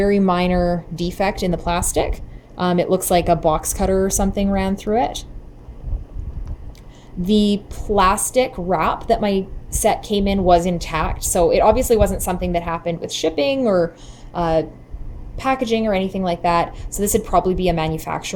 minor defect in the plastic. It looks like a box cutter or something ran through it. The plastic wrap that my set came in was intact, so it obviously wasn't something that happened with shipping or packaging or anything like that. So this would probably be a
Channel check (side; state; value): both; identical; correlation 1.00